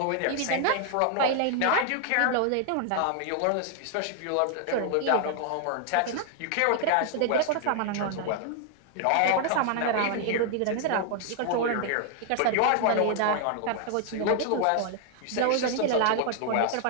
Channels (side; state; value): both; different; correlation 0.00